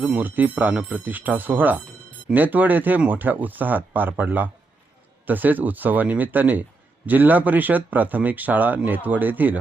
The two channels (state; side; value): quieter; left; 3.5 dB